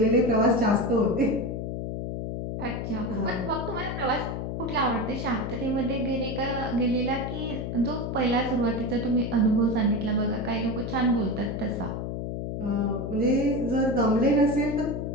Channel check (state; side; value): noise; left; hum, 4 dB below the sound